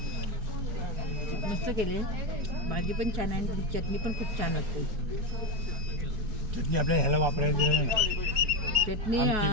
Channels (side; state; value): left; late; 4.7 ms